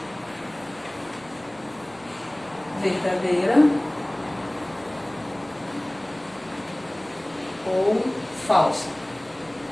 Verdadeira ou falsa.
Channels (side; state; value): right; noise; rumble, 28 dB below the sound